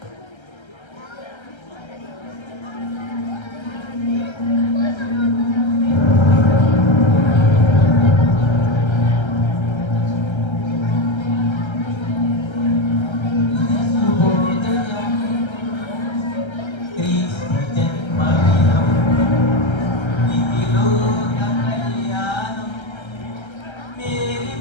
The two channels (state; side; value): late; right; 1.3 ms